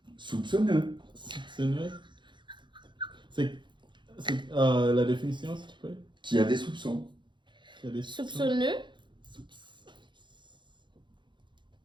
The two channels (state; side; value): late; left; 0.23 ms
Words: Soupçonneux. Soupçonneux. C'est la définition, s'il te plaît. Qui a des soupçons. Qui a des Soupçonneux.